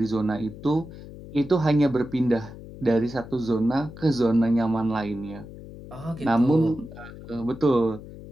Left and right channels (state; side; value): noise; left; hum, 15 dB below the sound